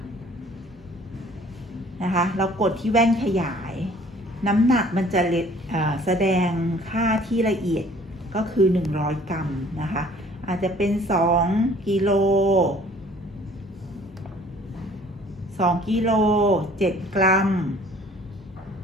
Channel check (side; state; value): both; normal; correlation 0.54